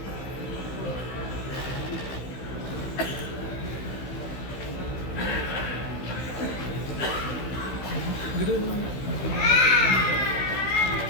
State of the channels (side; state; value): right; late; 16 ms